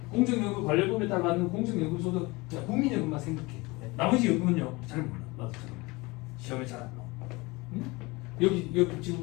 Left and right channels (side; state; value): right; quieter; 23.9 dB